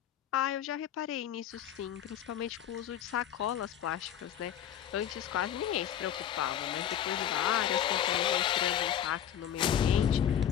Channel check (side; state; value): right; quieter; 10.0 dB